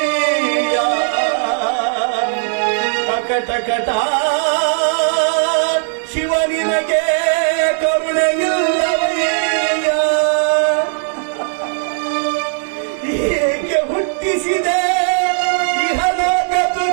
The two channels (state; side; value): silent; left; digital silence